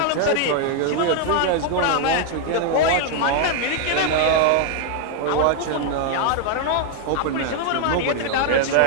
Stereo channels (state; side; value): different; both; correlation 0.01